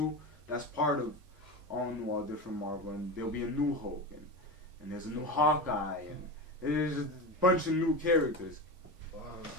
That's part of All New, All Different Marvel, and there'll be a new Hulk, and there's a new Hawkeye, and there's a bunch of new characters. Wow,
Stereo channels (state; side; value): normal; both; correlation 0.24